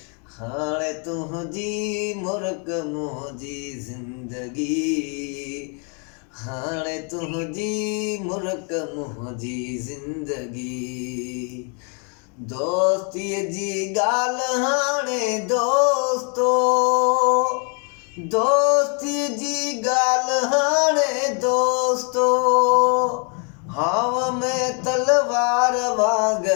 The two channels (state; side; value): quieter; right; 38.2 dB